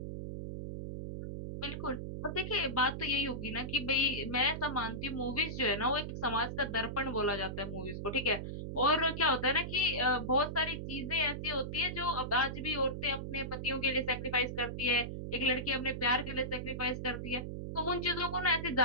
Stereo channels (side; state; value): right; noise; hum, 6 dB below the sound